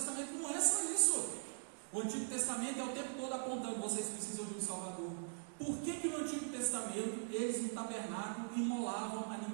não é só isso. O Antigo Testamento é o tempo todo apontando, vocês precisam de um Salvador. Por que no Antigo Testamento eles no tabernáculo imolavam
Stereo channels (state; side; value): silent; left; digital silence